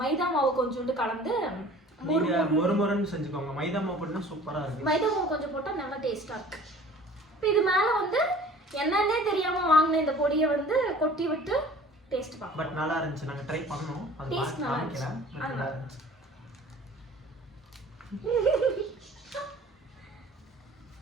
மைதா மாவு கொஞ்சோண்டு கலந்து மொறுமொறுன்னு செஞ்சுக்கோங்க. மைதா மாவு போட்டா சூப்பராக இருக்கு. மைதா மாவு கொஞ்சம் போட்டால் நல்லா டேஸ்ட்டாக இருக்கு. இப்போ இது மேலே வந்து என்னன்னே தெரியாமல் வாங்கின இந்த பொடியை வந்து கொட்டி விட்டு டேஸ்ட் பார்க்கலாம். பட் நல்லா இருந்துச்சு. நாங்கள் ட்ரை பண்ணோம். அது டேஸ்ட் நல்லா இருந்துச்சு. நல்லா இருந்துச்சு.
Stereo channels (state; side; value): normal; both; correlation 0.47